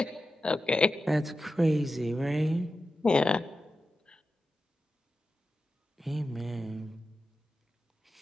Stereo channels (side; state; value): both; normal; correlation 0.91